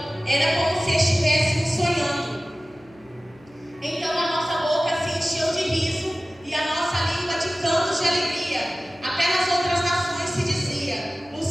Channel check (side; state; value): right; noise; hum, 28 dB below the sound